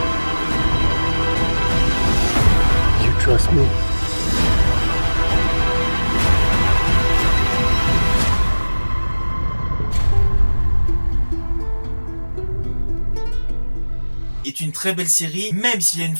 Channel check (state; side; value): inverted; both; correlation -1.00